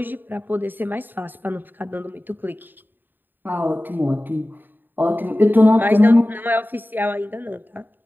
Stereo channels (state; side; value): late; left; 0.092 ms